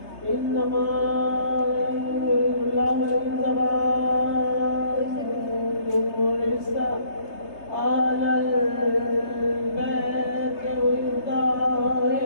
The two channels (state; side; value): late; right; 3.3 ms